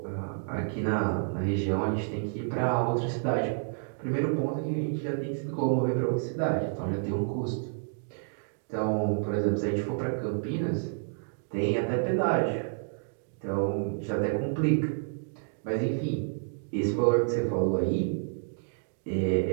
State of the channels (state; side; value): silent; left; digital silence